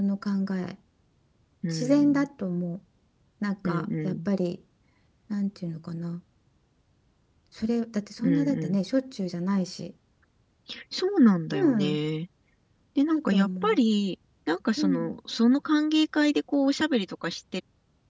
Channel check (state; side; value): identical; both; correlation 1.00